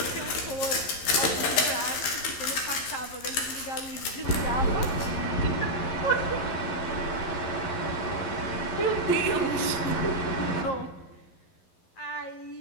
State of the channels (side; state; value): right; late; 11 ms